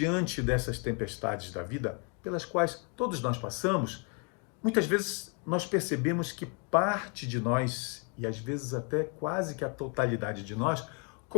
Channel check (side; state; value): right; quieter; 37.0 dB